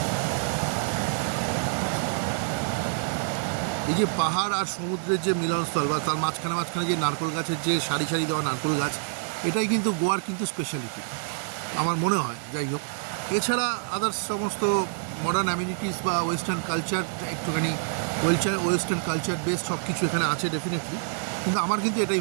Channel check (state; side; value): silent; left; digital silence